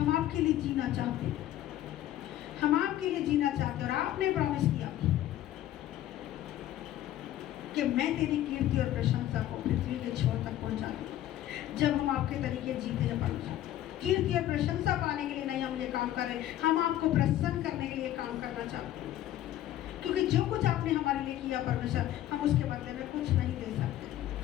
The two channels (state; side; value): quieter; right; 13.0 dB